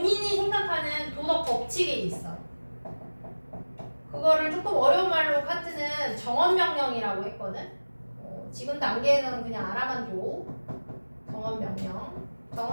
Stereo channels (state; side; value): inverted; both; correlation -1.00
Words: 생각하는 도덕 법칙에 있어. 그거를 조금 어려운 말로 칸트는 정언명령이라고 했거든. 지금 단계에서는 그냥 알아만 줘. 정언명령.